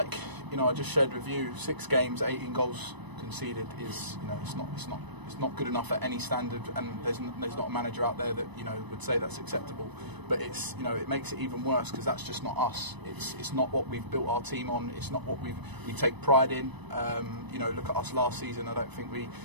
just shared with you, 6 games, 18 goals conceded is, it's not good enough at any standard, and there's not a manager out there that would say that's acceptable. But it's it makes it even worse because that's just not us. It's not what we've built our team on. It's not what we take pride in. Look at us last season. I don't think we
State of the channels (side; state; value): left; late; 1.0 ms